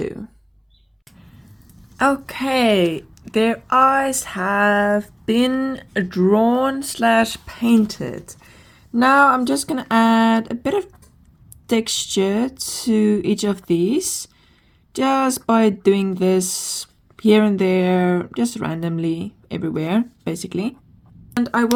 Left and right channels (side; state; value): both; identical; correlation 1.00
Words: Okay, their eyes have been drawn / painted. Now I'm just gonna add a bit of texture to each of these, just by doing this here and there, just randomly everywhere, basically. And I